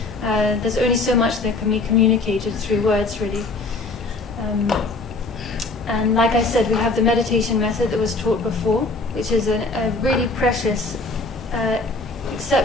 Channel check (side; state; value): right; quieter; 3.3 dB